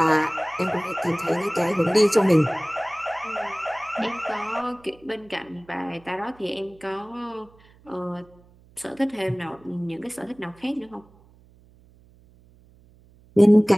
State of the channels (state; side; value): noise; right; hum, 28 dB below the sound